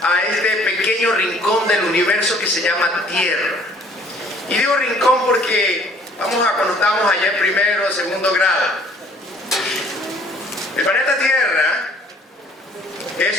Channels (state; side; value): normal; both; correlation 0.57